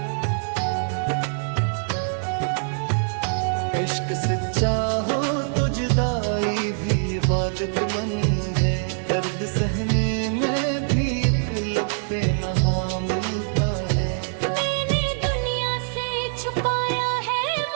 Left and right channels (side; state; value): left; silent; 63 dB below the other